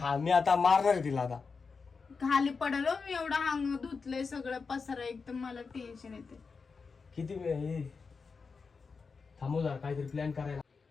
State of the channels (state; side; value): quieter; right; 4.9 dB